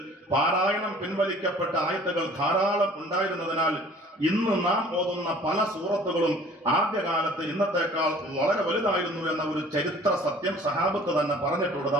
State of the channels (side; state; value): both; normal; correlation 0.50